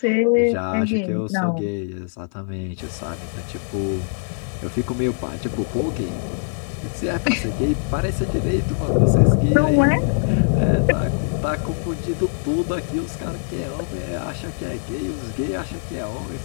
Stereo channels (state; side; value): silent; right; digital silence